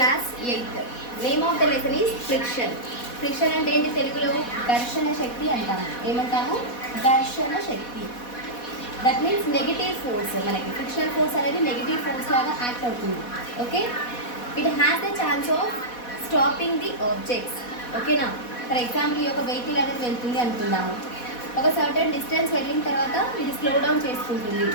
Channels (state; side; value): late; right; 4.1 ms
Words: 8th. Name of the lesson is friction. Friction అంటే ఏంటి తెలుగులో ఘర్షణ శక్తి అంటాము. ఏమంటాము? ఘర్షణ శక్తి. That means negative force. మనకి ఫ్రిక్షనల్ ఫోర్స్ అనేది నెగిటివ్ ఫోర్స్ లాగా యాక్ట్ అవుతుంది. Okay, it has the chance of stopping the objects. ఓకేనా? ఫర్ ఎగ్జాంపుల్ ఈ యొక్క వెహికల్ అనేది వెళ్తుంది అనుకుందాము. ఒక సర్టెన్ డిస్టెన్స్ వెళ్ళిన తర్వాత ఇది స్లో డౌన్ చేసుకుంటుంది.